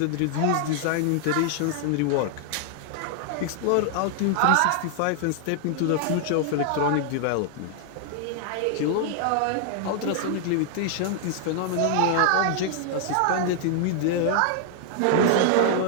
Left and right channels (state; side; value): different; both; correlation 0.00